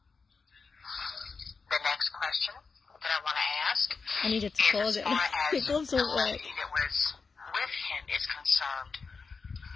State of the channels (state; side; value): quieter; right; 4.8 dB